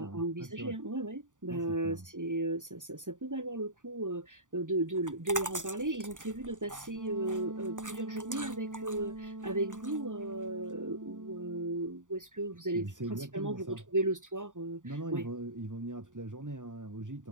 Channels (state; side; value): late; left; 0.87 ms